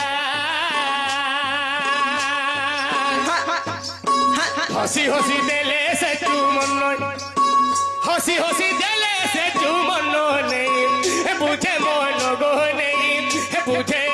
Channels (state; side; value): identical; both; correlation 1.00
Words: হসি হসি দেলে সে চুমন হসি হসি দেলে সে চুমন নেই বুঝে মন গো নেই বুঝে